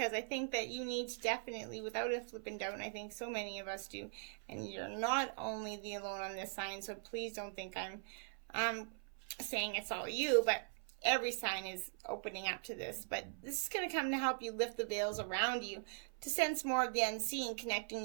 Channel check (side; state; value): left; silent; 50 dB below the other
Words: I think that you need to definitely, without a flipping doubt, and I think so many of us do, and you're not only the alone on this sign, so please don't think I'm saying it's all you, but every sign is opening up to this. But this is going to come to help you lift the veils around you, to sense more of the unseen, connecting